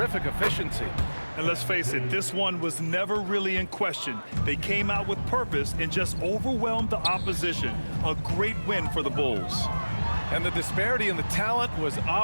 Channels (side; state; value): both; inverted; correlation -1.00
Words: efficiency. And let's face it, this one was never really in question. They came out with purpose and just overwhelmed the opposition. A great win for the Bulls. And the disparity in the talent was